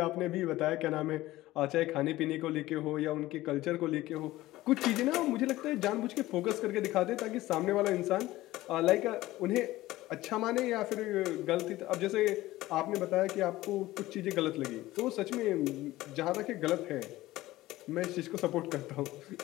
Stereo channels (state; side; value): quieter; right; 17.0 dB